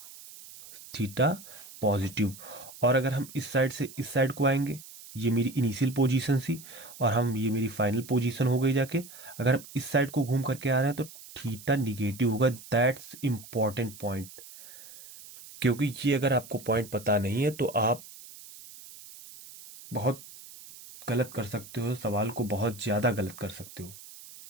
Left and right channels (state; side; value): noise; right; hiss, 17 dB below the sound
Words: थीटा पॉजिटिव। और अगर हम इस साइड से इस साइड को आएंगे, ये मेरी इनिशियल पोजीशन थी और हम ये मेरी फाइनल पोजीशन हो गई जाके, अगर हम इस साइड को घूम करके आ रहे हैं तो थीटा निगेटिव होगा। दैट्स इंपॉर्टेंट पॉइंट, क्योंकि ये अगर आपको पॉइंट पता नहीं है तो आप बहुत गलत कर सकते हो, सवाल को बहुत ज्यादा गलत कर सकते हो।